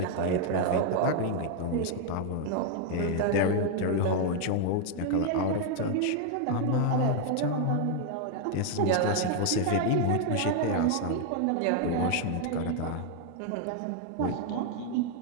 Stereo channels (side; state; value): both; different; correlation 0.00